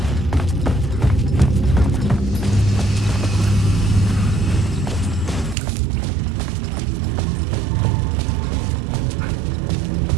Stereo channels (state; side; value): drops out; left; at 5.6 s